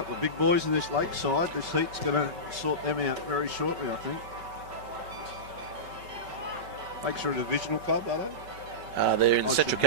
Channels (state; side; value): late; left; 5.3 ms